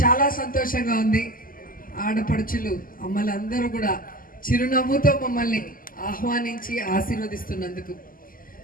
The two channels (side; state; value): right; late; 0.41 ms